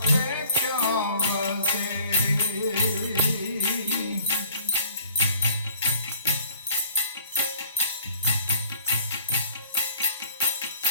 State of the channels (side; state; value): both; inverted; correlation -0.53